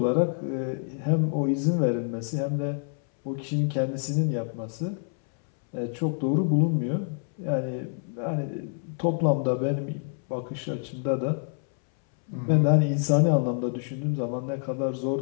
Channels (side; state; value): right; silent; 60 dB below the other